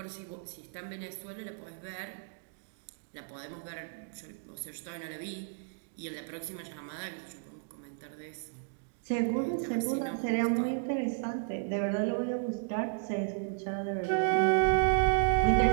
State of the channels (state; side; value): silent; left; digital silence